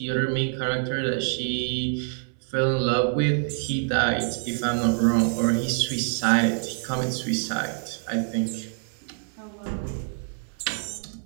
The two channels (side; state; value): left; silent; 61 dB below the other